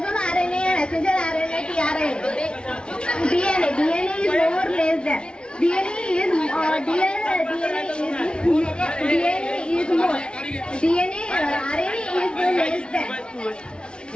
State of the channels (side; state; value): right; late; 0.056 ms